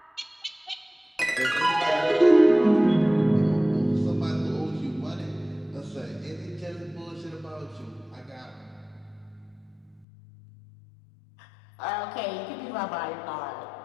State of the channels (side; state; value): right; drops out; at 10.1 s